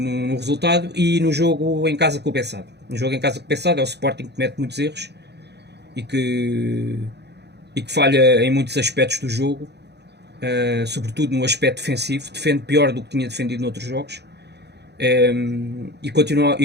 resultado, e no jogo em casa com o Bessado. No jogo em casa com o Bessado é o Sporting que comete muitos erros e que falha em muitos aspectos do jogo, sobretudo no aspecto defensivo, defende pior do que tinha defendido noutros jogos, e continua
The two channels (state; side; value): late; left; 0.49 ms